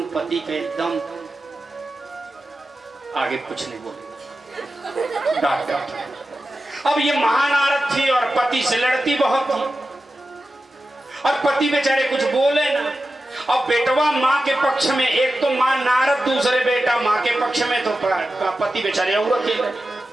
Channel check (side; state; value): both; normal; correlation 0.93